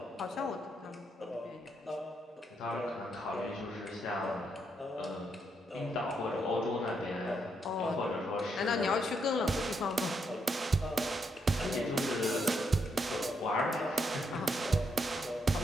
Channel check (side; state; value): both; normal; correlation 0.78